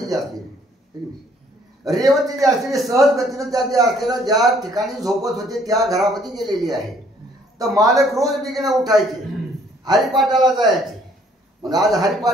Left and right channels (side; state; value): both; normal; correlation 0.62